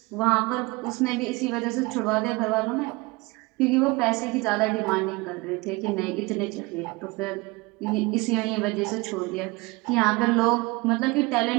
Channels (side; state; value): left; quieter; 24.3 dB